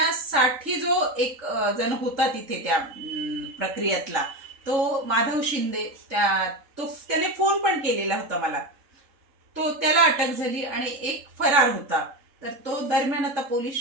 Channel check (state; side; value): late; left; 3.7 ms